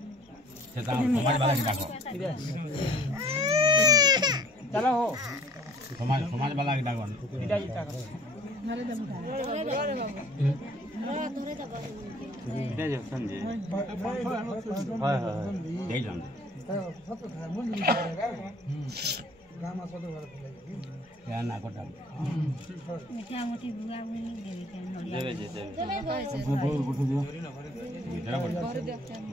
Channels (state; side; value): normal; both; correlation 0.53